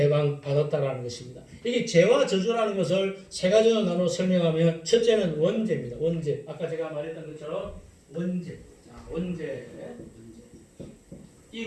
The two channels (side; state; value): both; identical; correlation 1.00